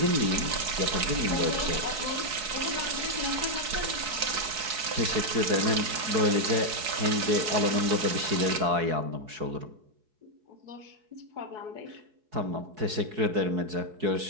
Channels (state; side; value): late; left; 4.7 ms